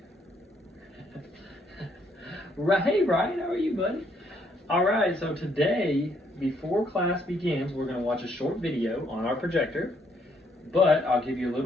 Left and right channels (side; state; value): both; normal; correlation 0.70